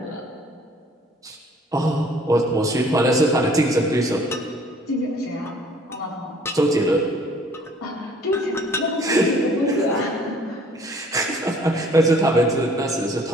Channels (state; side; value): normal; both; correlation 0.56